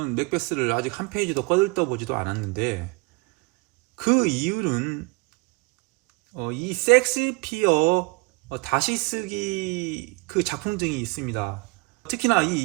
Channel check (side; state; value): left; quieter; 26.7 dB